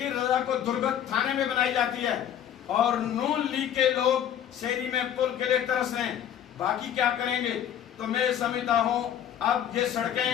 رضا کو درگت تھانے میں بنائی جاتی ہے اور نون لیگ کے لوگ شہری میں پل کے لیے ترس رہے ہیں، باقی کیا کریں گے؟ تو میں سمجھتا ہوں اب یہ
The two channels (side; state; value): right; quieter; 10.0 dB